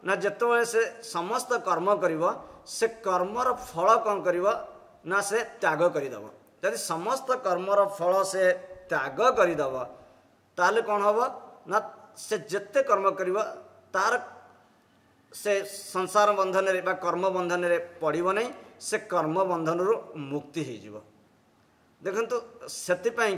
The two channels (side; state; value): both; identical; correlation 1.00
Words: ना जिते से समस्त कर्म कर से कर्मर फल कौन कर ना से त्याग करदेव। यदि समस्त कर्मर फल से त्याग करदेव ताले कौन हम ना से जिते कर्म कर तार से संसार बंधन रे बा कर्म बंधन रे पड़ो नहीं से कर्म बंधन रु मुक्ति हो। देखंतु सेतिपाई